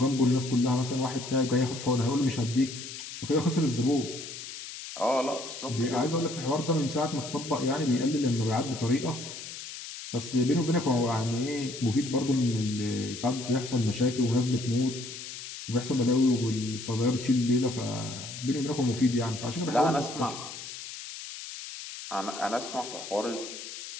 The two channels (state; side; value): noise; left; hiss, 10 dB below the sound